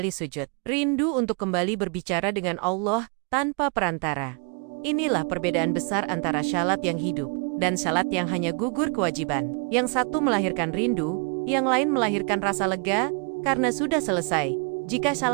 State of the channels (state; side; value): quieter; left; 37.1 dB